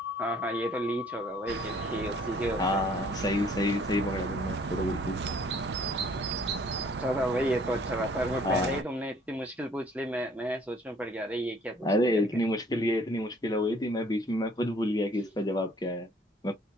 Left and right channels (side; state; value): both; normal; correlation 0.58